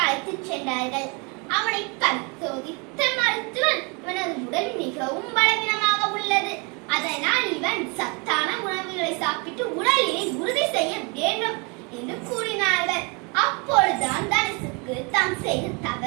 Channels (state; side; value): quieter; left; 31.7 dB